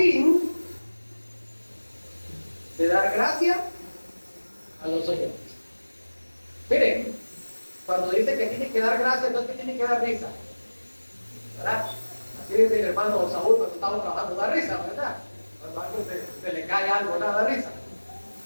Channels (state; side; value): inverted; both; correlation -1.00